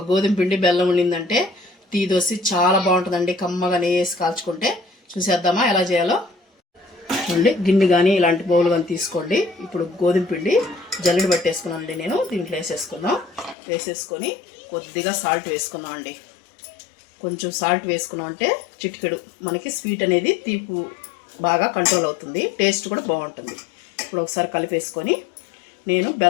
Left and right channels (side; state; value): right; drops out; at 13.6 s